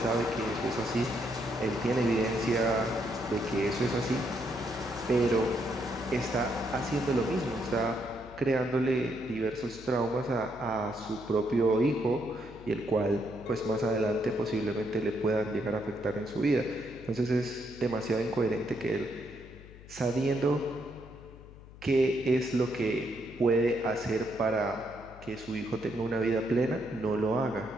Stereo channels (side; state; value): left; noise; hum, 18 dB below the sound